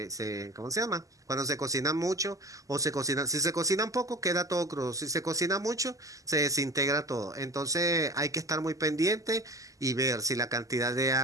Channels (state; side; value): late; left; 0.16 ms